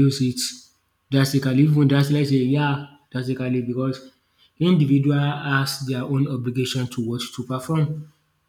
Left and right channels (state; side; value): identical; both; correlation 1.00